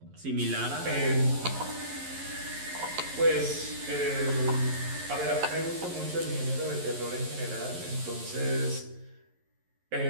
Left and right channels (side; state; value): left; late; 11 ms